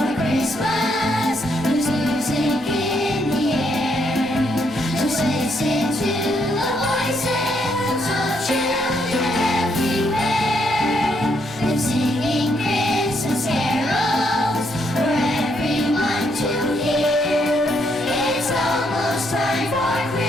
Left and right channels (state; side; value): normal; both; correlation 0.75